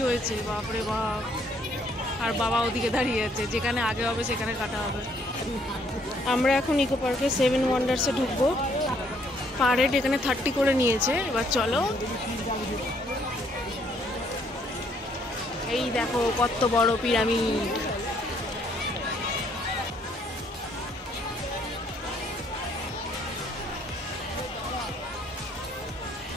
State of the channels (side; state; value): both; normal; correlation 0.67